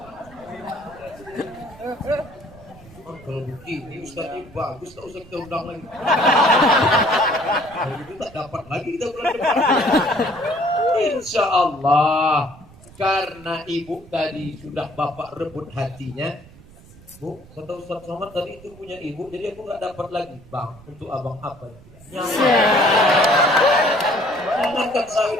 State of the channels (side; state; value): right; noise; rumble, 22 dB below the sound